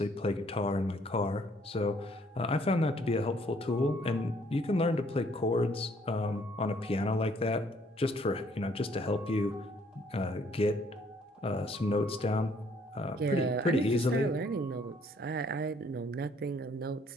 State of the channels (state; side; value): normal; both; correlation 0.64